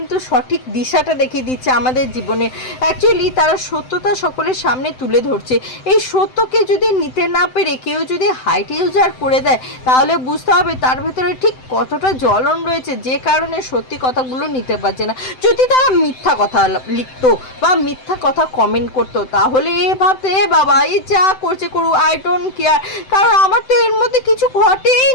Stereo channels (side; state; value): right; late; 7.8 ms